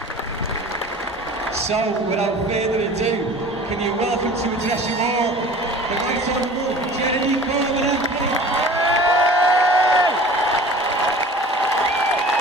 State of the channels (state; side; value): normal; both; correlation 0.42